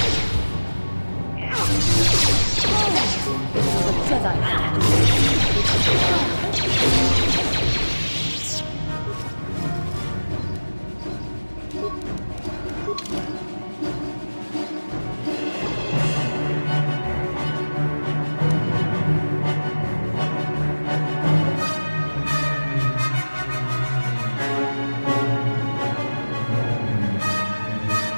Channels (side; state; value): both; inverted; correlation -1.00